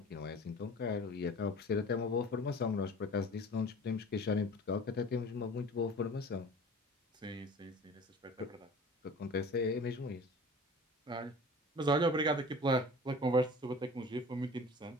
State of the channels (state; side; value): normal; both; correlation 0.42